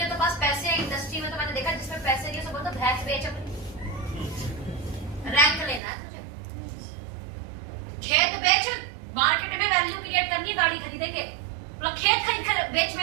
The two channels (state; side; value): drops out; left; at 5.8 s